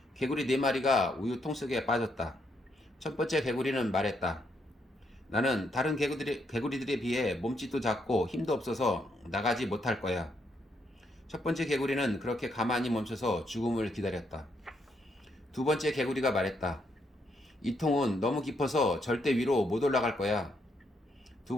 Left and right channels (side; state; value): both; normal; correlation 0.76